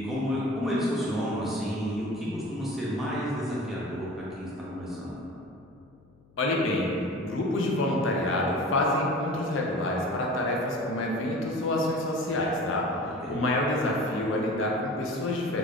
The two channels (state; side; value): noise; left; hum, 29 dB below the sound